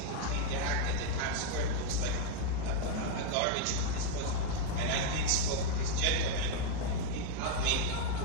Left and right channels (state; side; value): different; both; correlation 0.00